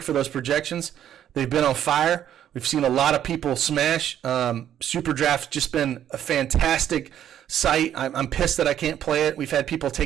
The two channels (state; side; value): quieter; left; 10.5 dB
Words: for those projections. They've been on fire. We've seen a lot of people smash. Super Draft's just been a fantastic site. I'm pissed that I can't play it. We've had people